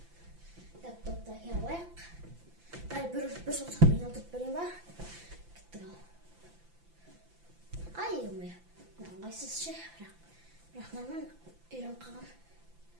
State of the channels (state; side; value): late; left; 5.9 ms